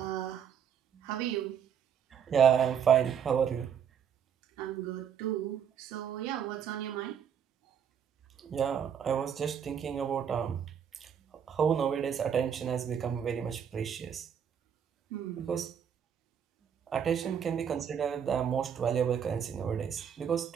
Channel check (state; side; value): quieter; left; 8.1 dB